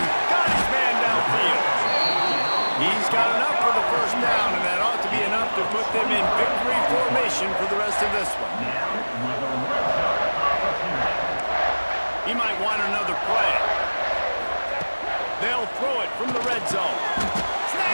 Got his man downfield. He's got enough for the first down, and that ought to be enough to put them in victory formation for the rest of this one. He might want another play. They'll throw it from the red zone.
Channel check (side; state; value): both; inverted; correlation -1.00